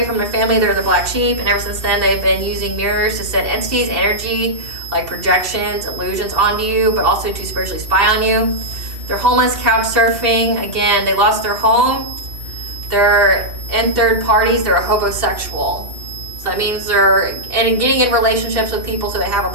from their family. They're the black sheep, and ever since then they've been using mirrors to send entities, energy, like projections, illusions onto you, but also to spiritually spy on you. They're homeless, couch surfing. Again, they lost their home. They're in third parties. They're a homosexual. So that means they're getting in relationships with people so they have a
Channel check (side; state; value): left; late; 2.7 ms